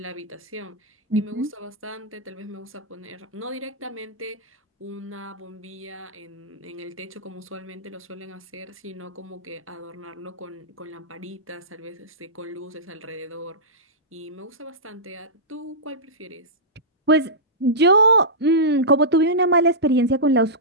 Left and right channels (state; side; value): normal; both; correlation -0.16